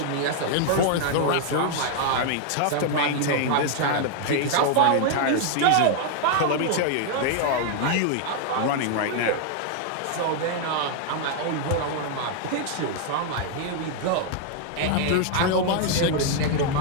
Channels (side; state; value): both; different; correlation 0.00